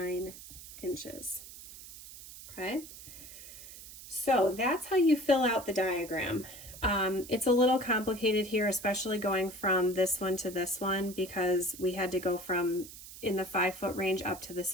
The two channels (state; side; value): noise; right; hiss, 15 dB below the sound